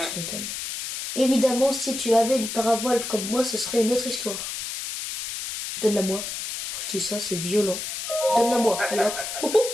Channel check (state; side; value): noise; left; hiss, 6 dB below the sound